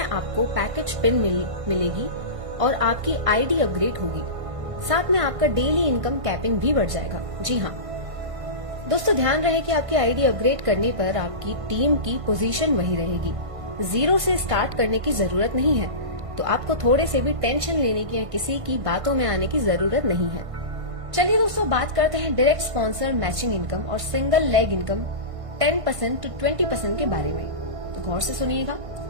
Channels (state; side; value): late; left; 1.5 ms